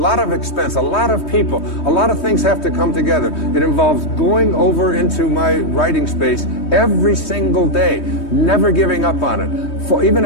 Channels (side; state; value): right; late; 3.2 ms